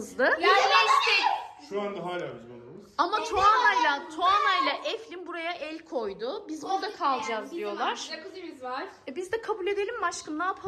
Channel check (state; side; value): identical; both; correlation 1.00